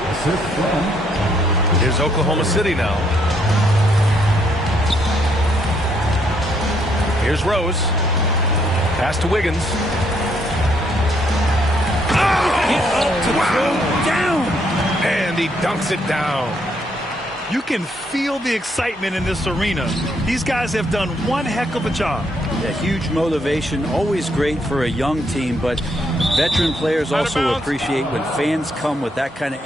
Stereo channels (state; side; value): normal; both; correlation 0.72